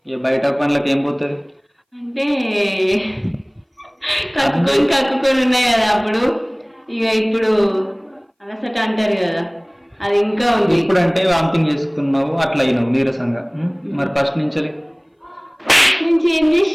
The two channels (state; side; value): identical; both; correlation 1.00